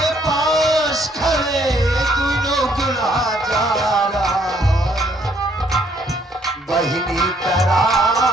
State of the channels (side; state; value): both; normal; correlation 0.67